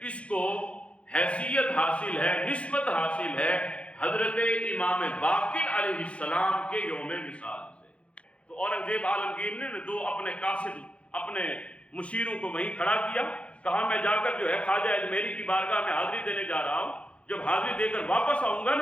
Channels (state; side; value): late; right; 0.062 ms